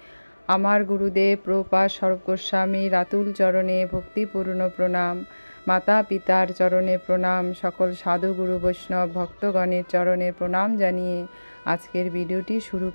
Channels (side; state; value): both; inverted; correlation -1.00